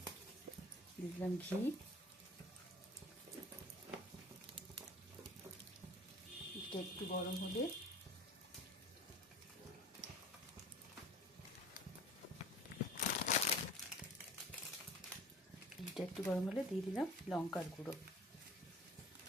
দিয়ে দিলাম ঘি, এটা একটু গরম হলে দিয়ে দিলাম লঙ্কার গুঁড়ো,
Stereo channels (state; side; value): normal; both; correlation 0.44